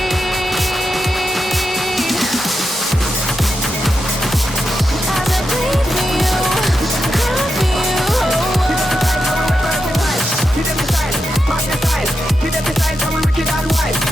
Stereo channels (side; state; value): both; normal; correlation 0.87